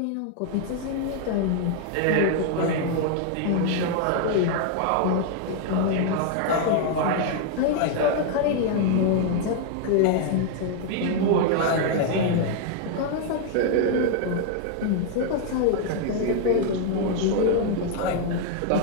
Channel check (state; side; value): different; both; correlation 0.00